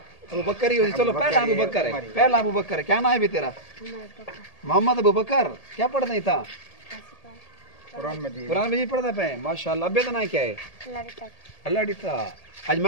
ابو بکر ہی اسی چلو پہلا ابو بکر ہے پہلا ابو بکر ہے کیا نام ہے بھی تیرا محمد ابو بکر کیا پڑھتا تھا قرآن مجید پڑھتا پہ ماشاءاللہ ابے کا نام کیا ہے اللہ ڈیتا آج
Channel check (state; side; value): late; right; 1.8 ms